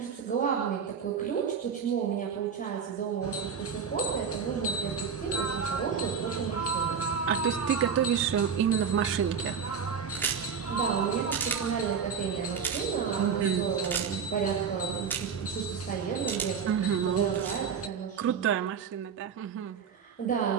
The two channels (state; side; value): quieter; left; 6.6 dB